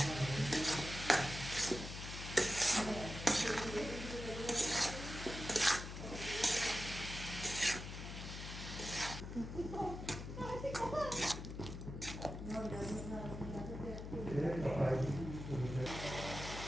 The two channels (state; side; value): noise; left; hum, 8 dB below the sound